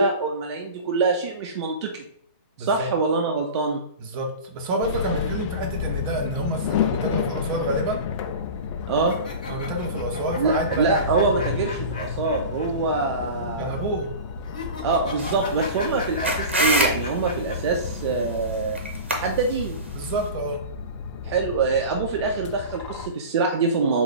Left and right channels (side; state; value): both; inverted; correlation -0.32